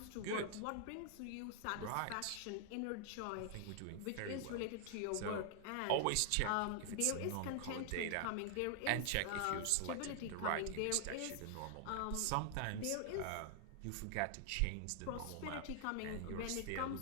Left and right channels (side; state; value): both; different; correlation 0.00